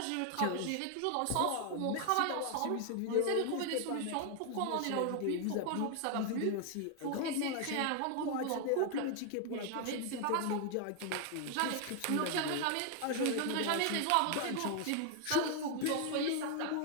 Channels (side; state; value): both; different; correlation 0.00